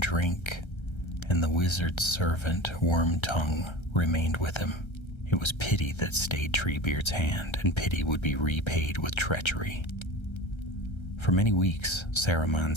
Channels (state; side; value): late; right; 1.3 ms